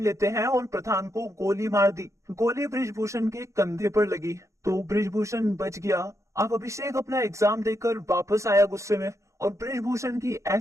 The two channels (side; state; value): left; late; 0.15 ms